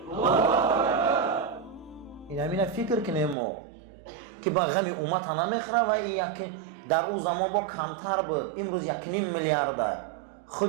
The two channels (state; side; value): drops out; left; at 3.4 s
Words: این همین فکر کنیم ما که با غم امت نمیخوره و این در او زمان با کمتر بود. امروز 1.5 میلیارد